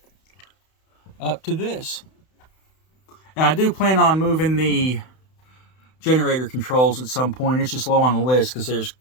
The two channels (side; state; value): right; late; 31 ms